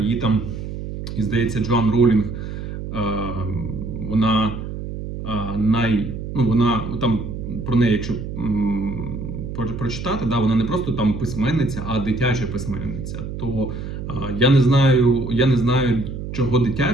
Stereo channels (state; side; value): noise; right; hum, 7 dB below the sound